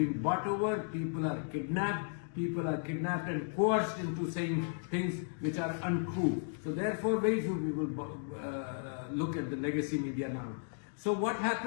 bought over. People are kidnapped. People are kidnapped and coerced into saying things which are untrue. So therefore, very few people look at the legacy media now. So what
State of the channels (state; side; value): silent; right; digital silence